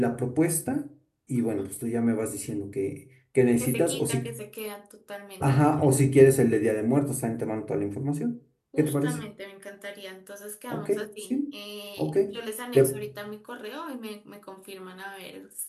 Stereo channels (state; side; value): identical; both; correlation 1.00